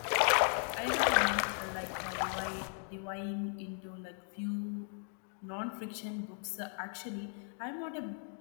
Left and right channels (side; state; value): right; silent; 53 dB below the other